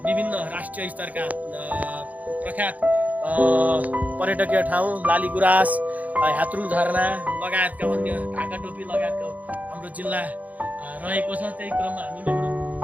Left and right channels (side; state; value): left; late; 0.076 ms